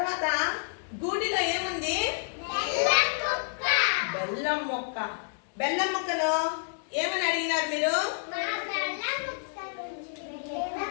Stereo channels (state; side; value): silent; right; digital silence